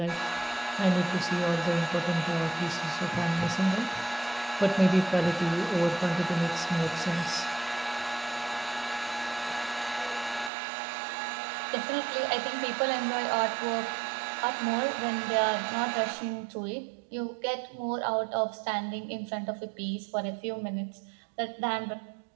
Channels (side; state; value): left; drops out; at 10.5 s